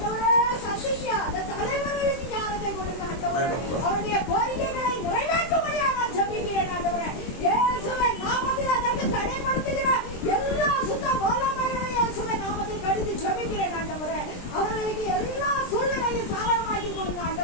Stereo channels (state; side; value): late; right; 23 ms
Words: சந்திக்க அந்த தலைவர்களுக்கு ஞானத்தை கொடுங்க ஆண்டவரே. அவருடைய கோரிக்கைகளை நிறைவேற்றும்படியாக நான் ஜெபிக்கிறேன் ஆண்டவரே. இயேசுவின் நாமத்தில் அதற்கு தடைப்படுத்துகிற எல்லா சுத்த வல்லமையையும் இயேசுவின் நாமத்தில் கடிந்து ஜெபிக்கிறேன் ஆண்டவரே. அவர்களுக்கு எல்லா சூழ்நிலையும் சாதகமாக்கி கொடுங்க